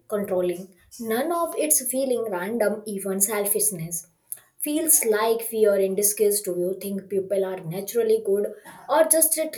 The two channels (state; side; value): identical; both; correlation 1.00